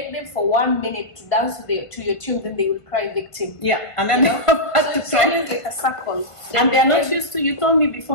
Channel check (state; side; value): late; right; 1.5 ms